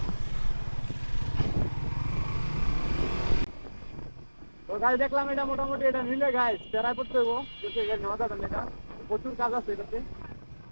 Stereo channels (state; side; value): inverted; both; correlation -1.00